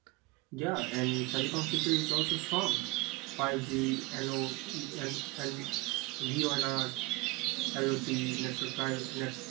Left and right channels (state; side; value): quieter; left; 23.3 dB